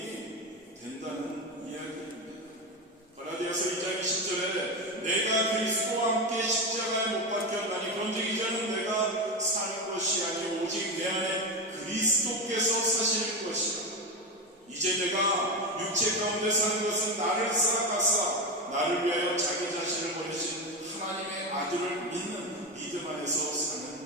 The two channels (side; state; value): both; normal; correlation 0.16